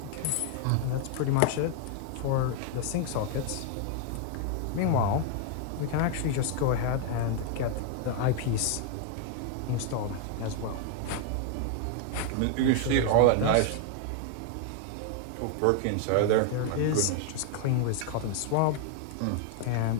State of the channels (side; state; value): both; different; correlation 0.00